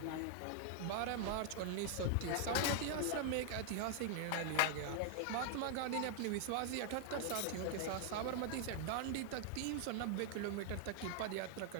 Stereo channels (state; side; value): different; both; correlation 0.00